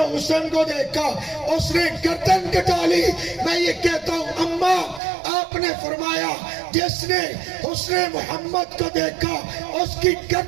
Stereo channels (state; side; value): drops out; left; at 5.0 s